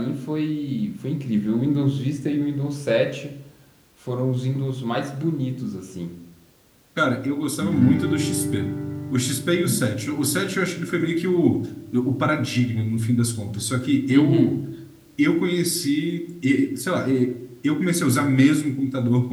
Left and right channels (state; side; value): identical; both; correlation 1.00